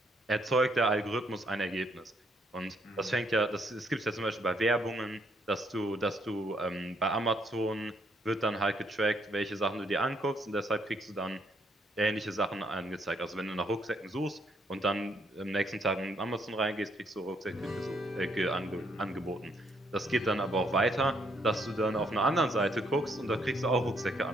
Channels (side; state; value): both; normal; correlation 0.71